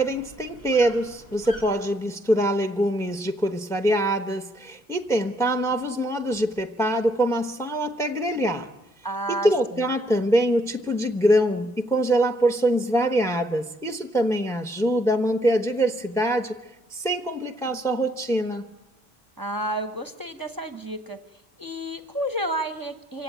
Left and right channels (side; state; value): both; normal; correlation 0.70